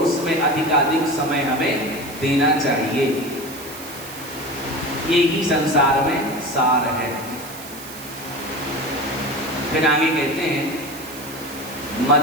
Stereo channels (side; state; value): right; noise; hiss, 14 dB below the sound